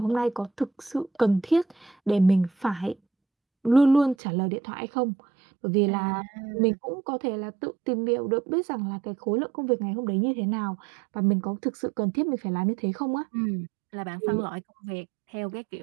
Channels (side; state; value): left; drops out; at 4.2 s